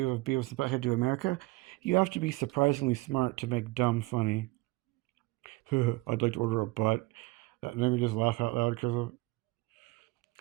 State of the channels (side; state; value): left; quieter; 21.7 dB